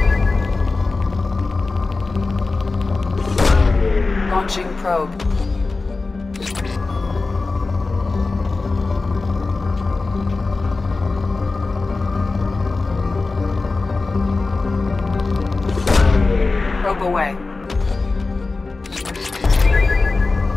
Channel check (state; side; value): quieter; right; 3.7 dB